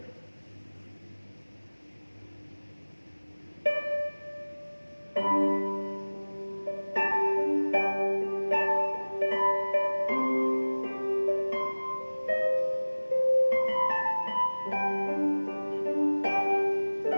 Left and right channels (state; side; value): inverted; both; correlation -1.00